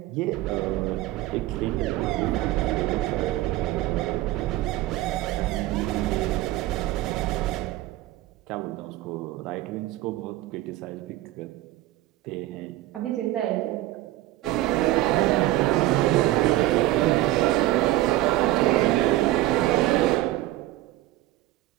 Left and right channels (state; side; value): quieter; left; 16.3 dB